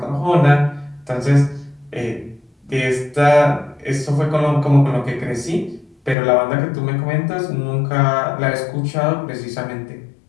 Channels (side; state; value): right; drops out; at 6.2 s